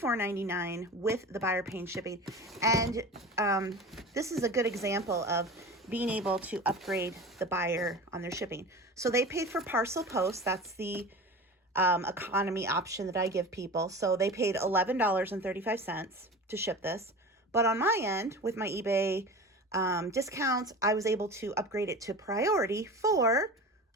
with the buyer paying shipping. And this is a good example of being able to upgrade the buyer on their shipping. So they paid for parcel post. That's the economy option that I give people. So they paid $11.35 to ship this. But on my end, with my eBay discounts, I was able to upgrade it to priority for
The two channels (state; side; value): normal; both; correlation 0.33